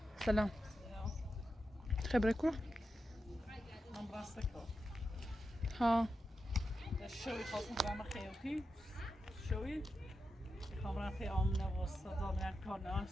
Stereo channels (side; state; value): both; normal; correlation 0.89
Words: سلام. خبرك كوره؟ من برستكو. ها. شوي خاصم برام خيوتي. شوي. خامرا في آمنة وصدا من كارنا